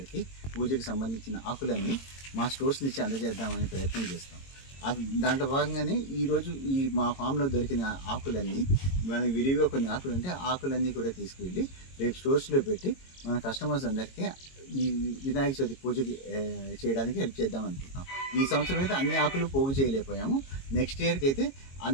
పూజకి సంబంధించిన ఆకులన్నీ మా స్టోర్స్ నుంచి అందజేద్దామని ప్రయత్నం చేస్తాం. దాంట్లో భాగంగానే ఈరోజు మా ఫామ్లో దొరికిన ఆకులన్నీ మనకి విరివిగా కొన్ని ఆకులు ఉంటే ఆకులన్నీ కూడా తీసుకువెళ్ళి రేపు స్టోర్స్లో పెట్టి మన కస్టమర్స్ అందరికీ ఈ వినాయక చవితి పూజకి చేయడానికి హెల్ప్ చేద్దాం అనుకుంటున్నాం. ఈ సంవత్సరం అయితే అన్ని ఆకులు పోగు చేయలేకపోయాము. నెక్స్ట్ ఇయర్కి అయితే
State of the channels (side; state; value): right; late; 22 ms